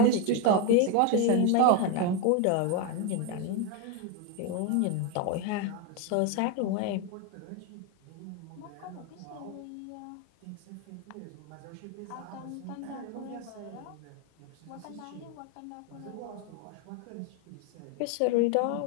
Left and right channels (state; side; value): different; both; correlation 0.02